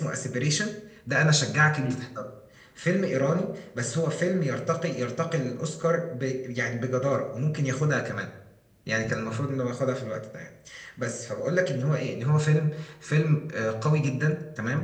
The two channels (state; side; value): identical; both; correlation 1.00